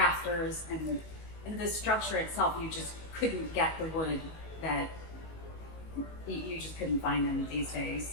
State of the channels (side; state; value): right; late; 19 ms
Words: and the structure itself, you just couldn't get the wood that you just couldn't find them these days.